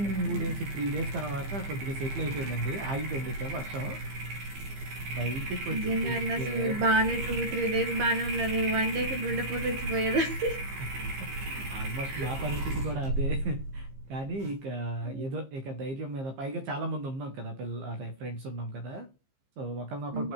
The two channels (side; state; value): left; late; 15 ms